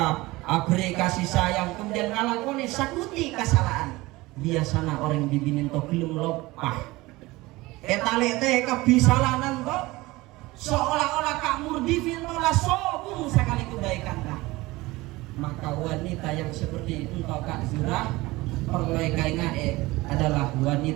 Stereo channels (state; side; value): quieter; left; 20.5 dB